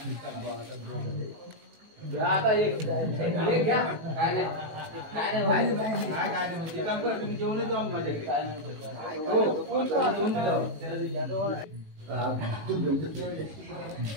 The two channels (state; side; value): late; left; 19 ms